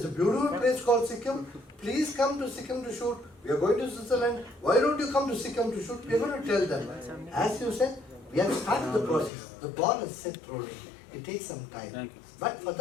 a beautiful place called Sikkim. Please come to Sikkim to shoot. We are going to Switzerland. Why don't you come to Sikkim to shoot? We are going to tell them. As you said, we have started the process. The ball is set rolling. It takes some time. But for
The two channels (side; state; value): right; drops out; at 9.3 s